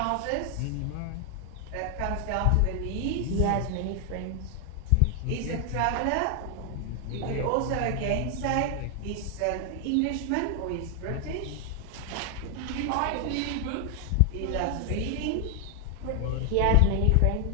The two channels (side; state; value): both; different; correlation 0.00